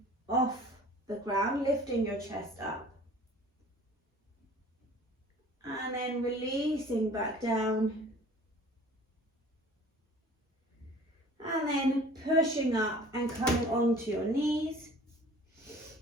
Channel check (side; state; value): both; normal; correlation 0.47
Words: off the ground, lifting your chest up. And then releasing back down. And then pushing up and coming onto your knees.